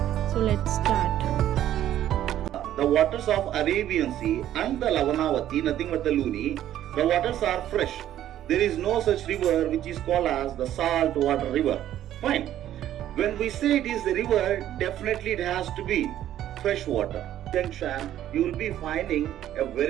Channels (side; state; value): left; quieter; 12.0 dB